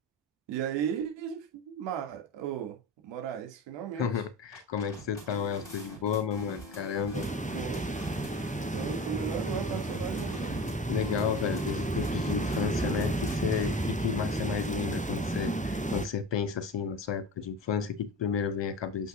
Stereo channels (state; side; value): normal; both; correlation 0.32